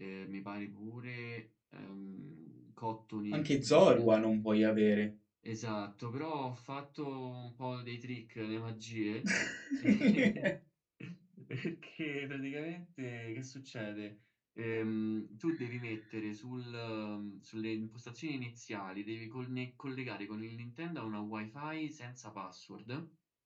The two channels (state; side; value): identical; both; correlation 1.00